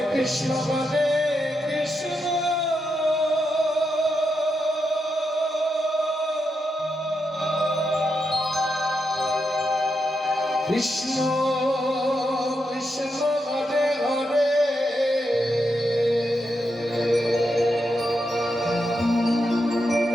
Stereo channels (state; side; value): normal; both; correlation 0.84